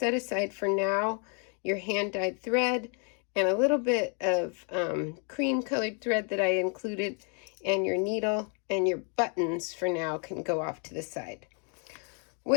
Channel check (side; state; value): right; quieter; 38.8 dB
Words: aside for now your hand-dyed thread and a little bit of cream-colored thread that I included, and your needle and your buttons for now can go off to the side.